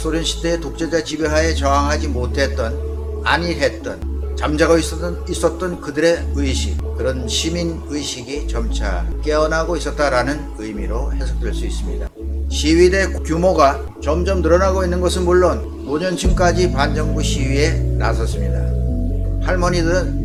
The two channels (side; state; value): both; identical; correlation 1.00